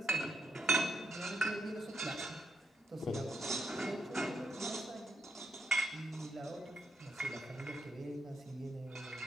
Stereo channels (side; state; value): both; normal; correlation 0.78